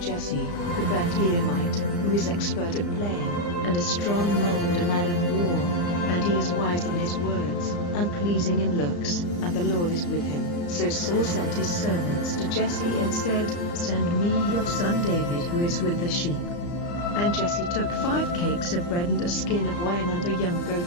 Jesse, the Bethlehemite, who is expert at playing, and a strong man and a man of war, and he is wise in his words, and pleasing in looks, and the Lord is with him. So Saul sent his servants to Jesse and said, Send me your son David who is with the sheep. And Jesse took 5 cakes of bread and a skin of wine and a young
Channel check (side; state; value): right; late; 34 ms